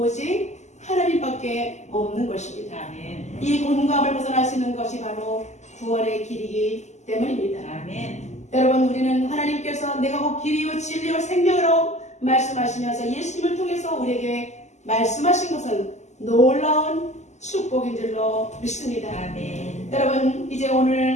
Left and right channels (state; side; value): late; right; 0.33 ms